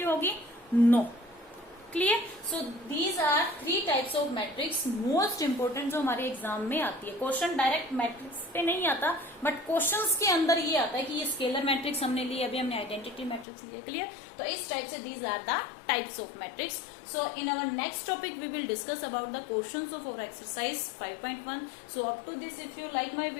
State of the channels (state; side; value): drops out; right; at 13.5 s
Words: होगी? No. Clear? So these are 3 types of matrix most important जो हमारे एग्जाम में आती है। क्वेश्चन डायरेक्ट मैट्रिक्स पे नहीं आता, बट क्वेश्चंस के अंदर ये आता है कि ये स्केलर मैट्रिक्स हमने ली, अभी हमने आइडेंटिटी मैट्रिक्स लिया। क्लियर? तो इस टाइप से these are the types of matrix. So in our next topic we will discuss about the questions of our exercise 5.1. So up to this, if you like my